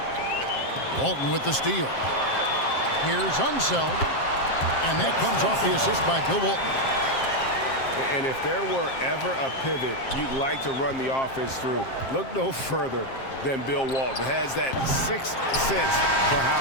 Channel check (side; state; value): right; late; 7.5 ms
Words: Walton with the steal. Here's Unseld. And that comes off the assist by Bill Walton. And if there were ever a pivot you'd like to run the offense through, look no further than Bill Walton. Has that 6th sense for